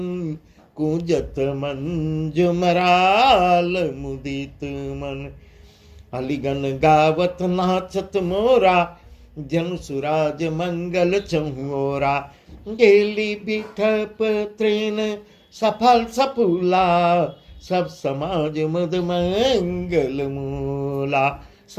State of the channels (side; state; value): both; identical; correlation 1.00